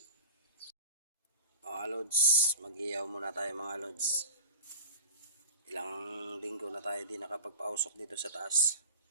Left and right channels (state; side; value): inverted; both; correlation -0.37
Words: Mga lods, mag-ihaw muna tayo mga lods. Ilang linggo na tayo di nakapagpausok dito sa taas.